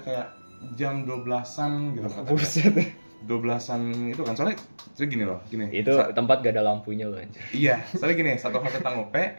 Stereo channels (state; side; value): inverted; both; correlation -1.00